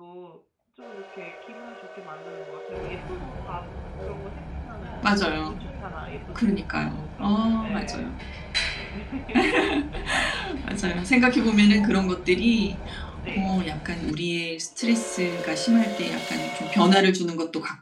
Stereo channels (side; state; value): both; identical; correlation 1.00